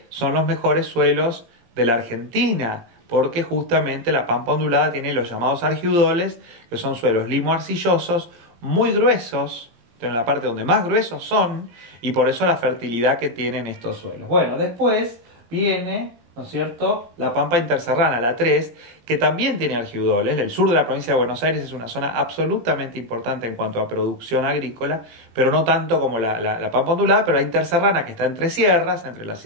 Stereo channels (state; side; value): late; left; 17 ms